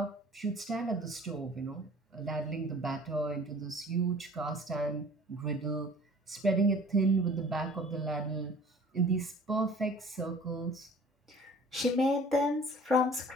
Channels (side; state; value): both; normal; correlation 0.49